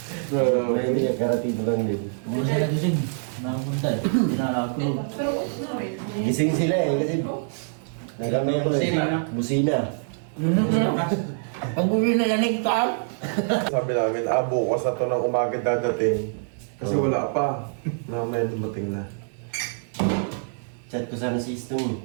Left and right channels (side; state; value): left; silent; 62 dB below the other